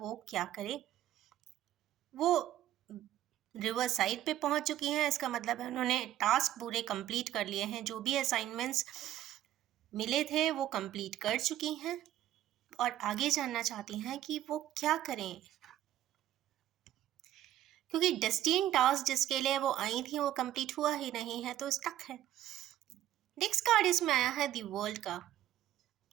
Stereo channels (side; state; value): left; quieter; 12.8 dB